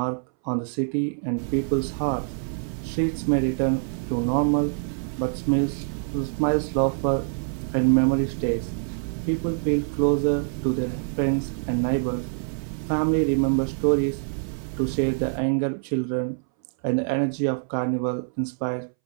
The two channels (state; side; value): silent; left; 62 dB below the other